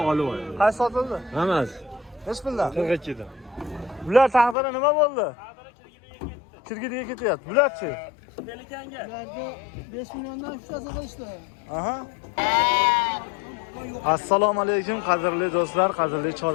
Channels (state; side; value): drops out; right; at 4.5 s